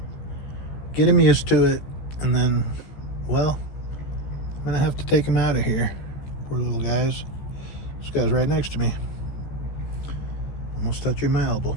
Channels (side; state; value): right; late; 14 ms